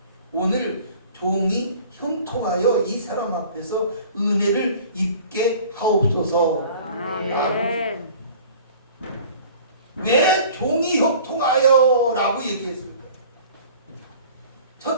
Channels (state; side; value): inverted; both; correlation -0.47